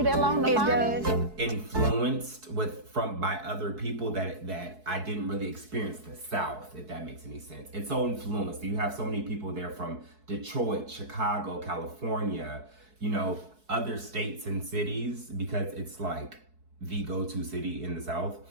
that long to find it? influenced by other people that I didn't really experience the South, if that makes any sense. It's so influenced. You have so many people there from Detroit, Chicago, California, you know, other states and cities, because it's like the go-to city in the South,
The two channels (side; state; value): left; late; 4.6 ms